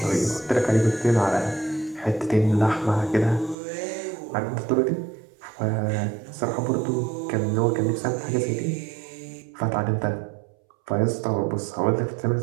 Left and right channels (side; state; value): left; drops out; at 3.6 s